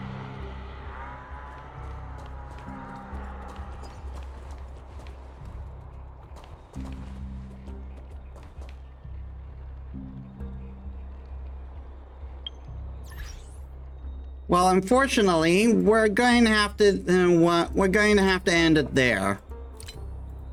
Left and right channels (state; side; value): identical; both; correlation 1.00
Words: Well, unfortunately, we're going to have to end it there.